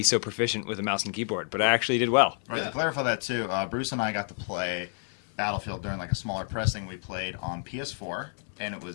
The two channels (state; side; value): silent; right; 58 dB below the other